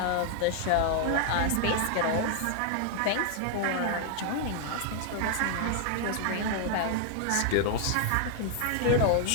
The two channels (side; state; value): both; different; correlation 0.00